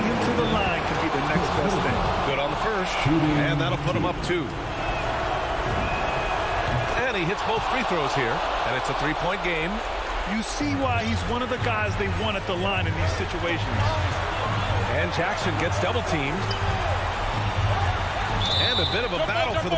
him to the line could be the next best thing. Good on the first. And that'll put him up 2. And he hits both free throws here. And it's a 3-point game. You see why he's one of the guys they want at the line in these situations. And Jackson gets double teamed. And a bit of a battle for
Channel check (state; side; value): identical; both; correlation 1.00